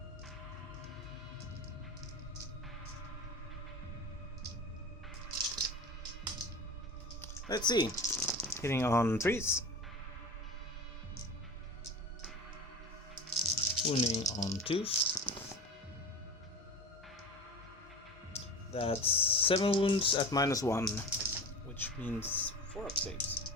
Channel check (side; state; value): both; normal; correlation 0.31